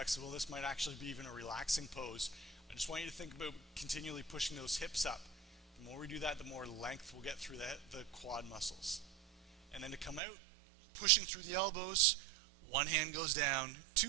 this might actually be even a relaxing pose. I just want you to think about continually pushing those hips up. The more we do that, the more length we'll get through the quad muscles. And then to come out, pushing through the elbows, one hand goes down,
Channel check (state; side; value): drops out; left; at 10.2 s